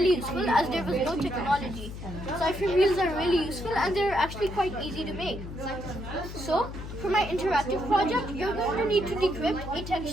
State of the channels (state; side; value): noise; left; hum, 10 dB below the sound